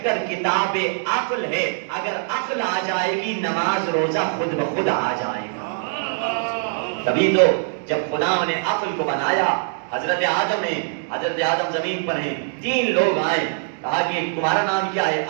کتاب عقل ہے. اگر عقل آ جائے گی نماز روزہ خود بخود آ جائے گا. تبھی تو جب خدا نے عقل کو بنایا, حضرت آدم زمین پر ہیں, 3 لوگ آئے, کہا کہ تمہارا نام کیا ہے؟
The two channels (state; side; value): silent; left; digital silence